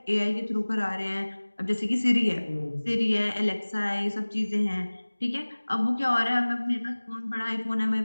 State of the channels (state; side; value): inverted; both; correlation -1.00